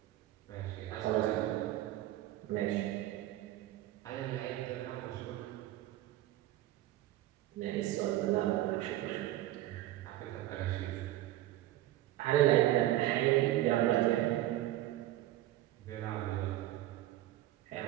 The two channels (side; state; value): left; quieter; 14.7 dB